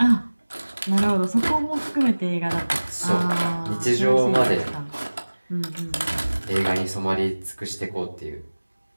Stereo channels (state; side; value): inverted; both; correlation -1.00